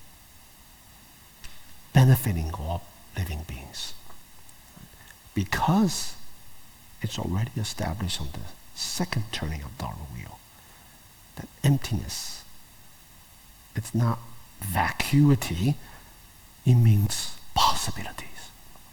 benefiting all living beings. Because it's already established on the second turning of Dharma wheel, that emptiness, it's not vacuity, it means possibilities,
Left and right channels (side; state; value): both; identical; correlation 1.00